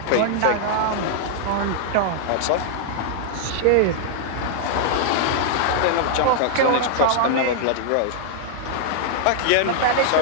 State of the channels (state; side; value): different; both; correlation -0.01